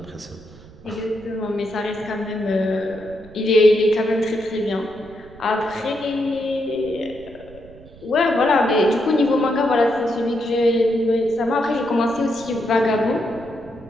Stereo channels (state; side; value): noise; right; rumble, 21 dB below the sound